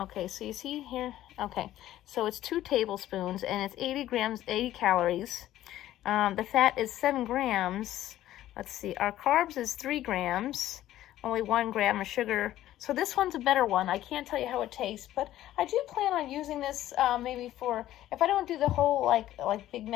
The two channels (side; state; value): right; quieter; 13.6 dB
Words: so you see here? Okay, so it's 2 tablespoons, and it's 80 calories. The fat is 7 grams. Let's see, our carbs is 3 grams. Only 1 gram of sugar. So this one's a better one. I can't tell you how it tastes, but I do plan on using this maybe for, if I don't do the whole like Big